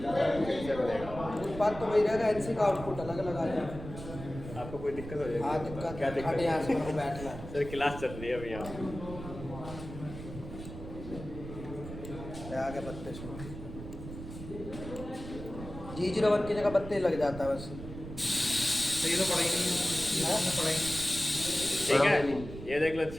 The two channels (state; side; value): noise; right; rumble, 11 dB below the sound